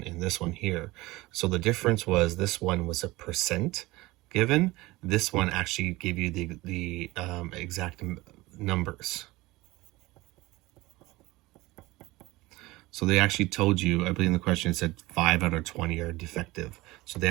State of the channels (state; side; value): quieter; left; 20.2 dB